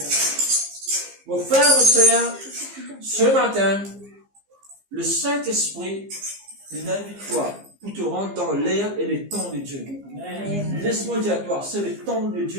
Mon frère, mon sœur, ce matin, le Saint-Esprit invite toi pour te rendre dans l'air et les temps de Dieu. Laisse-moi dire à toi, c'est le temps de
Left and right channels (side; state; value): left; late; 15 ms